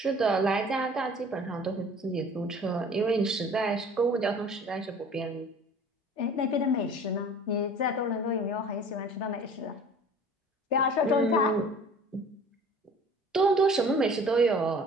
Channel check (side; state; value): both; normal; correlation 0.47